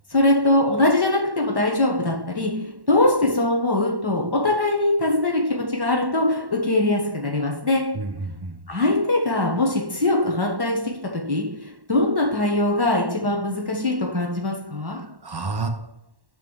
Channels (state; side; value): late; left; 1.1 ms